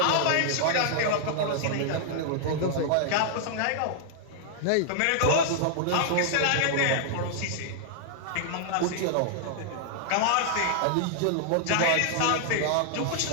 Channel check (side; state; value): both; different; correlation -0.01